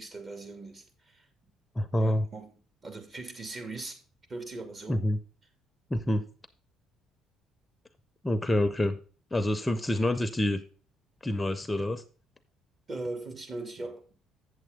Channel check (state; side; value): normal; both; correlation 0.92